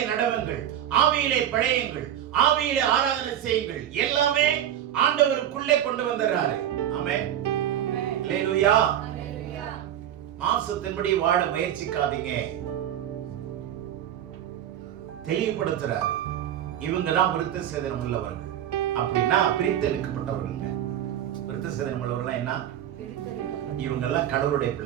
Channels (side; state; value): left; quieter; 10.9 dB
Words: நடவுங்கள், ஆவியிலே பழையுங்கள், ஆவியிலே ஆராதனை செய்யுங்கள். எல்லாமே ஆண்டவருக்குள்ளே கொண்டு வந்துறாரு. ஆமென். அல்லேலூயா. மாம்சத்தின்படி வாழ முயற்சிக்காதீங்க. தெளிவுபடுத்துறாரு. இவங்க தான் விருத்த சேதனம் உள்ளவர்கள். அப்படின்னா பிரித்தெடுக்கப்பட்டவர்கள். விருத்த சேதனம் உள்ளவர்கள் என்ன? இவங்க எல்லாம் கடவுளுடைய